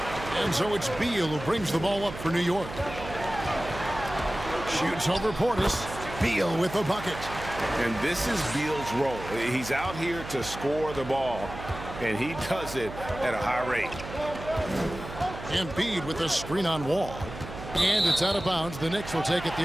And so it's Beal who brings the ball up for New York. Shoots over Portis. Beal with the bucket. And this is Beal's role. He's out here to score the ball, and he does it at a high rate. Embiid with a screen on Wall. And it's out of bounds. The Knicks will take it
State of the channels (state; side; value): noise; right; hum, 11 dB below the sound